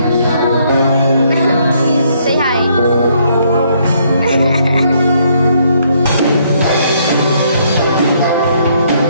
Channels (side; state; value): both; inverted; correlation -0.69